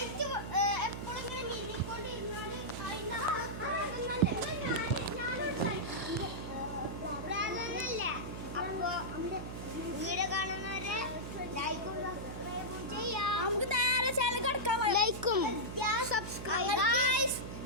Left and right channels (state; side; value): noise; right; hum, 7 dB below the sound